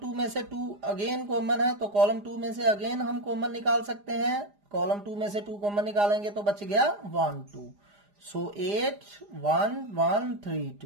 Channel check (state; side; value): late; left; 4.9 ms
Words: में से 2 अगेन कॉमन है तो कॉलम 2 में से अगेन हम कॉमन निकाल सकते हैं, कॉलम 2 में से 2 कॉमन निकालेंगे तो बच गया 1 2। सो 8 1 1 3